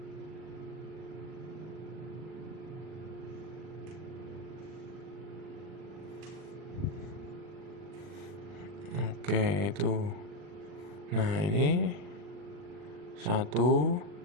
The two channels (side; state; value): left; late; 40 ms